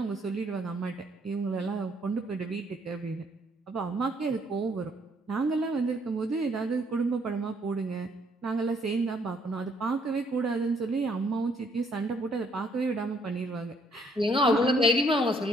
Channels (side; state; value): both; normal; correlation 0.67